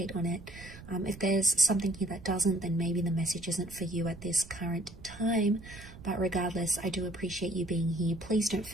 on it. If there's something here that doesn't, then maybe the message isn't for you at this current time. But regardless, I do appreciate you being here. Please don't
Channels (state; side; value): noise; right; rumble, 17 dB below the sound